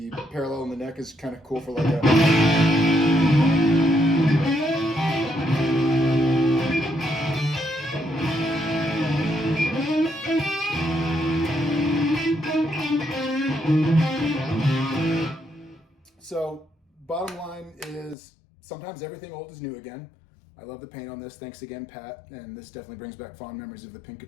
parallel in the neck, is kind of cool for like a. So, bottom line is sometimes everything old is new again. I love the paint on this. Thanks again, Pat. And this definitely brings back fond memories of the Pink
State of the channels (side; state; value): right; drops out; at 18.2 s